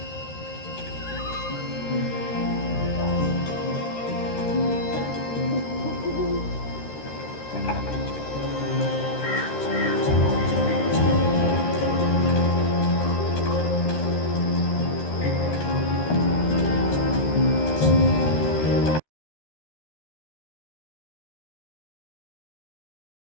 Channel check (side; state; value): right; late; 13 ms